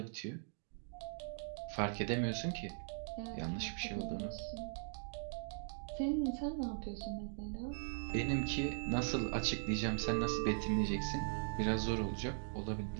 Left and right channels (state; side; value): silent; left; digital silence